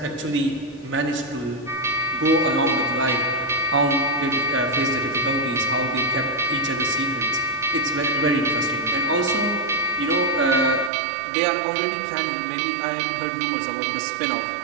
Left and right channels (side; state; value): left; drops out; at 10.9 s